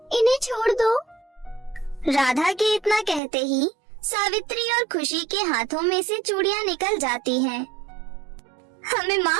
इन्हें छोड़ दो। राधा के इतना कहते ही सावित्री और खुशी के हाथों में से चूड़ियाँ निकल जाती हैं। हमें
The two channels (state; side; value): drops out; left; at 3.2 s